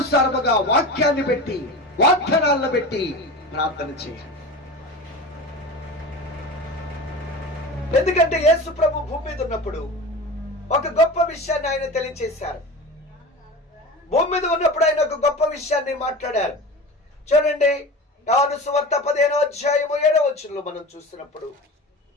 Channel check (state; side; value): normal; both; correlation 0.32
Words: వాక్యాన్ని పెట్టి, వాగ్దానాలను పెట్టి ప్రార్థన చేయాలి. ఎందుకంటే యేసు ప్రభు భూమి మీద ఉన్నప్పుడు ఒక గొప్ప విషయాన్ని ఆయన తెలియచేశారు. భూమి మీద ఉన్నప్పుడు ఆయన ఒక గొప్ప విషయాన్ని మాట్లాడారు. చూడండి, యోహాను సువార్త 15వ అధ్యాయము 7వ వచనంలో మనం చూస్తున్నప్పుడు,